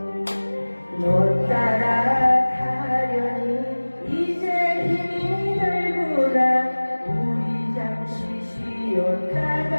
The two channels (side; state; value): both; inverted; correlation -1.00